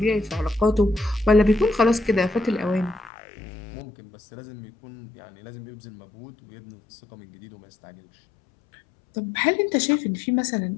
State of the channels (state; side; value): drops out; right; at 3.1 s